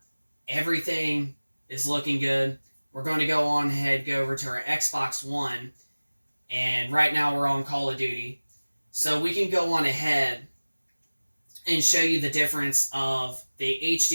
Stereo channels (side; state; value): both; inverted; correlation -1.00